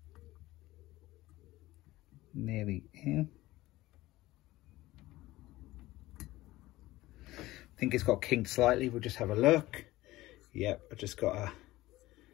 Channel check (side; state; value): right; quieter; 17.7 dB